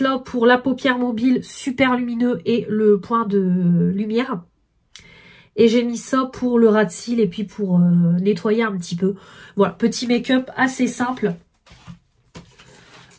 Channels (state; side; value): identical; both; correlation 1.00